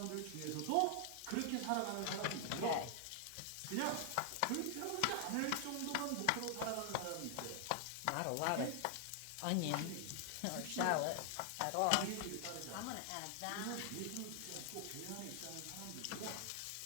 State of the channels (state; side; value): different; both; correlation 0.00